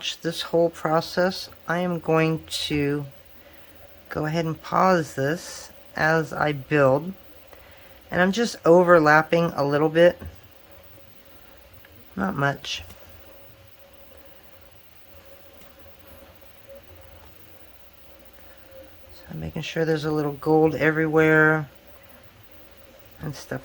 this whole process. I am going to go ahead and pause this as I build, and I'm just overlapping a little bit, not much. So I'm making sure there's a little gold everywhere and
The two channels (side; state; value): both; identical; correlation 1.00